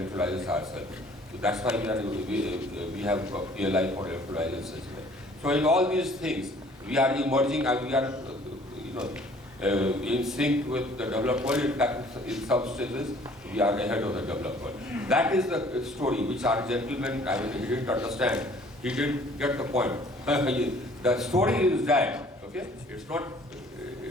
ourselves. So that's why we have a PLI for electrolyzers as well. So in all these things, we are emerging and we are in sync with the developed world. In fact, in some stages, we are ahead of the developed world. That is the story which our gentleman, he didn't understand. He didn't get the point. The story is that, okay? It's not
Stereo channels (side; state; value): both; normal; correlation 0.55